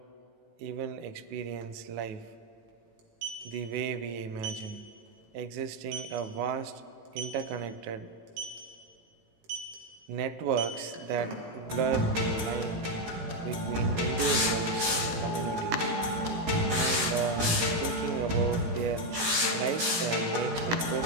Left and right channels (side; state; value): left; late; 18 ms